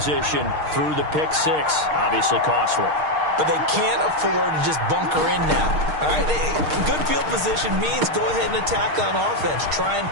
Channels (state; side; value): late; left; 6.5 ms